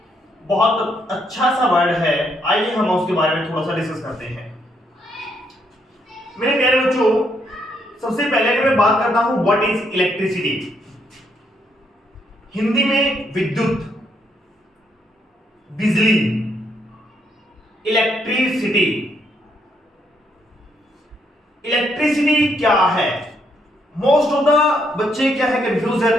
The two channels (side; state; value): both; normal; correlation 0.74